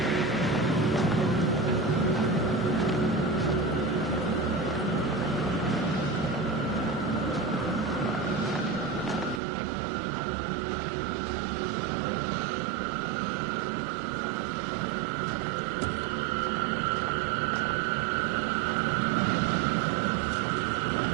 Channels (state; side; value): drops out; left; at 9.4 s